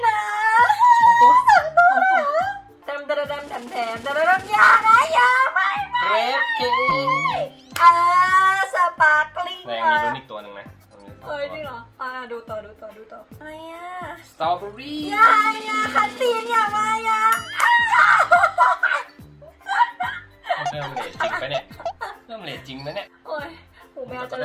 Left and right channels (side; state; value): both; identical; correlation 1.00